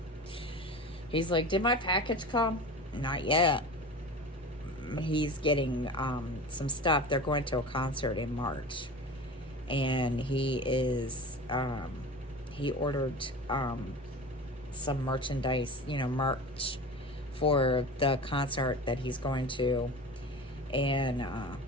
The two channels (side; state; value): both; normal; correlation 0.33